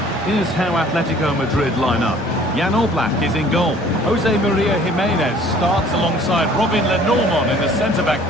Here's how Atletico Madrid line up. Jan Oblak is in goal. Jose Maria Jimenez starts alongside Robin Lenormand in the centre-back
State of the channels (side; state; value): both; normal; correlation 0.53